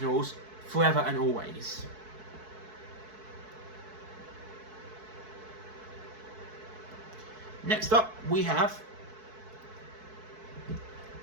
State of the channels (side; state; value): left; late; 4.6 ms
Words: forever and always. Next up, we have